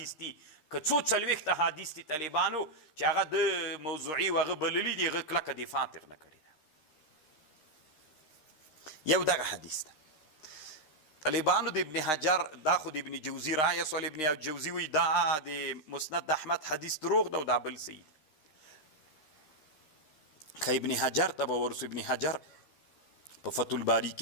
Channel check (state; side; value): late; right; 13 ms